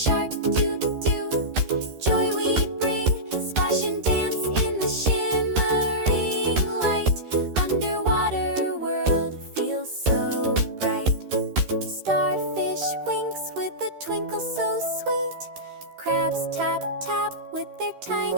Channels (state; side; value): late; left; 13 ms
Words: doo-doo, joy we bring. Splash and dance in the shimmering light. Underwater world feels so bright. Starfish winks with a twinkle so sweet. Crabs tap tap with their